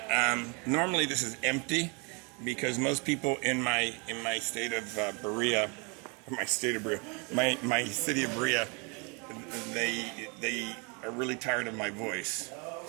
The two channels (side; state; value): left; quieter; 32.6 dB